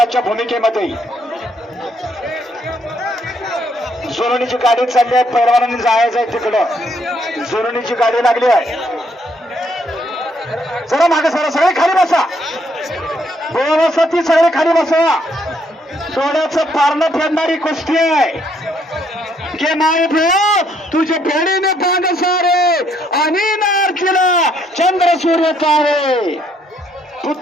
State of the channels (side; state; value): both; normal; correlation 0.70